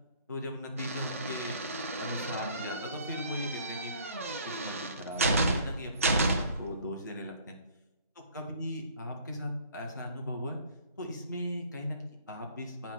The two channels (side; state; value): both; inverted; correlation -0.54